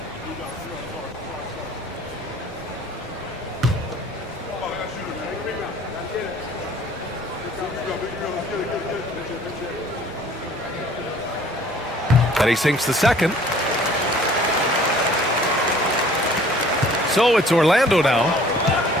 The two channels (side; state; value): both; normal; correlation 0.53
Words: And he sinks the second. So it's Orlando now.